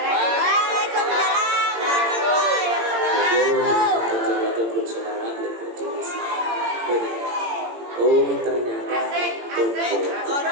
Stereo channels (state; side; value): late; left; 18 ms